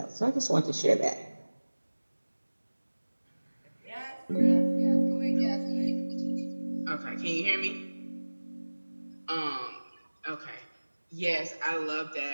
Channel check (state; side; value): inverted; both; correlation -1.00